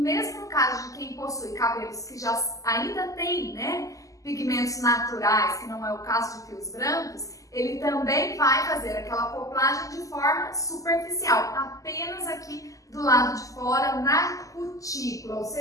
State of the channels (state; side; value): late; right; 0.16 ms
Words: no caso de quem possui cabelos que já ainda tem, né, pigmentos naturais, que não é o caso de fios brancos, ele também vai fazer aquela acoplagem de forma superficial, apenas aqui do lado de fora, na cutícula, ou